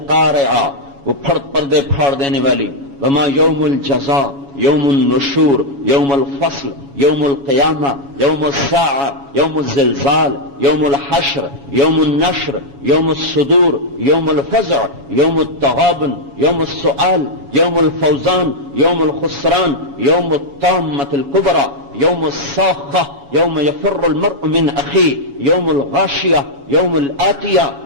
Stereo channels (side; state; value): left; late; 7.2 ms